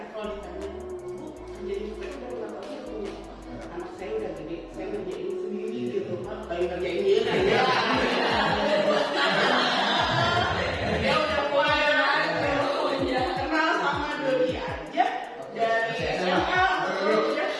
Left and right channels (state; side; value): identical; both; correlation 1.00